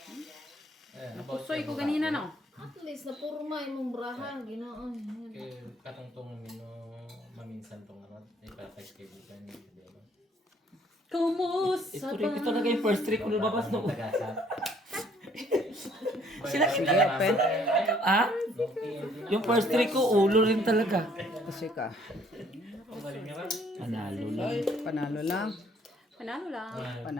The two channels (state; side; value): normal; both; correlation 0.62